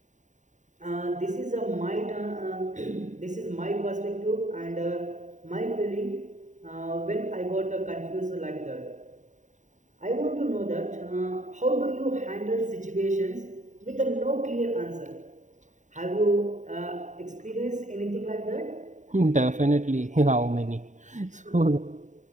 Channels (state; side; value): late; left; 0.36 ms